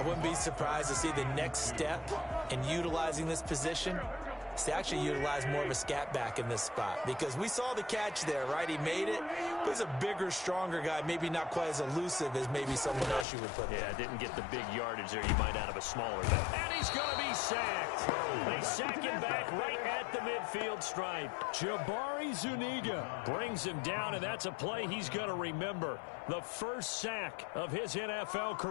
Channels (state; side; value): drops out; right; at 13.2 s